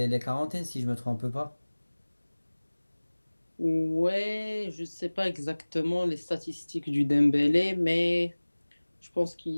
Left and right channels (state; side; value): inverted; both; correlation -1.00